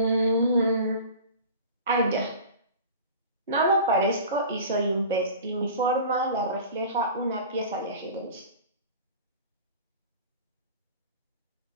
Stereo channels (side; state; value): both; inverted; correlation -0.38